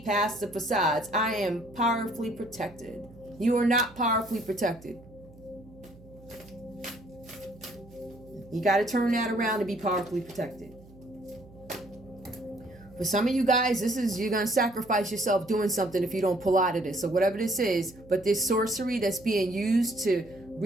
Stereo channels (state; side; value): noise; right; hum, 22 dB below the sound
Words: past the facades. I am powerfully protected. You are not powerfully protected. You got to turn that around to be powerfully protected. For some of you guys, you're going to sacrifice yourself doing something if you don't pull out of this. So whatever this is, but this sorcery that's being used to